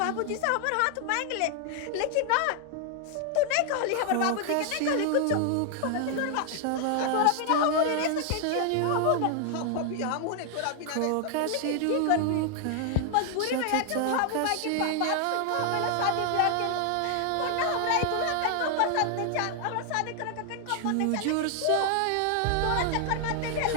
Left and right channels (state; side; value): different; both; correlation 0.00